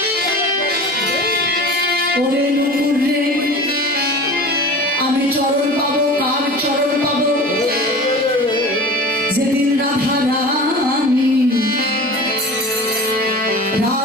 ওরে নুপুর রে, আমি চরণ পাবো, কার চরণ পাবো? যেদিন রাধা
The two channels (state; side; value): normal; both; correlation 0.37